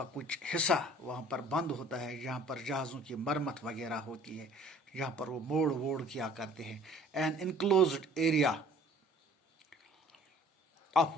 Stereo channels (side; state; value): both; normal; correlation 0.52